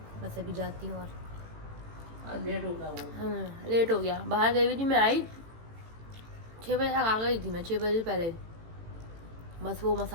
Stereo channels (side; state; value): left; late; 18 ms